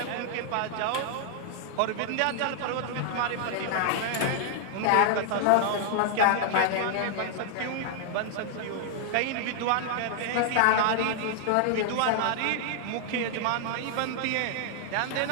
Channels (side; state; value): both; different; correlation 0.00